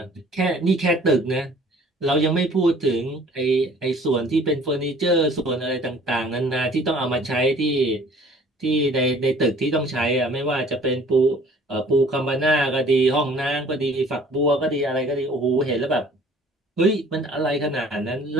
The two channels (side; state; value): both; normal; correlation 0.53